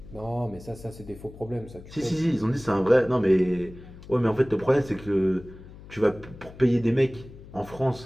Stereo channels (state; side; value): noise; left; hum, 18 dB below the sound